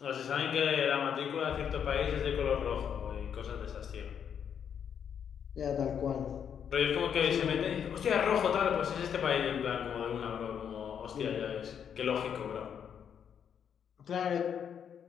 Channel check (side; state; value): right; quieter; 8.1 dB